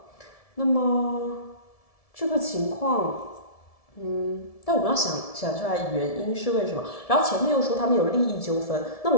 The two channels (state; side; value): late; right; 1.7 ms